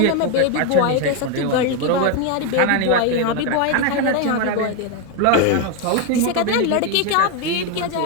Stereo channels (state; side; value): different; both; correlation 0.02